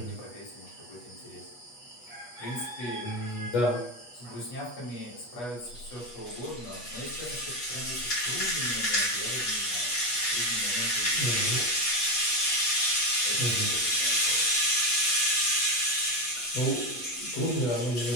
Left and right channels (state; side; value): late; right; 8.2 ms